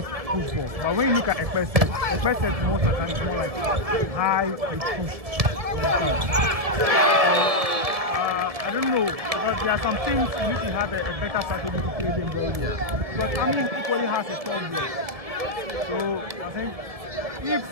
push ball. But when you look at Ekpese most of the time it's more like high and push. I don't know, because there are some things you need to have a better strategy to play them very well. But I mean, equally has a strong block. So I think if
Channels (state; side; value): late; left; 1.6 ms